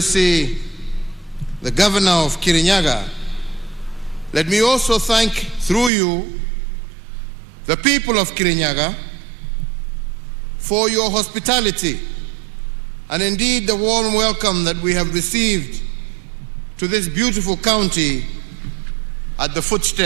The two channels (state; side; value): drops out; left; at 5.9 s